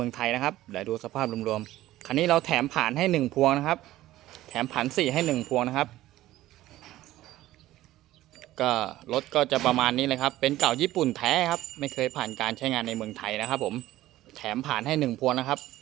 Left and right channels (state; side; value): quieter; left; 15.4 dB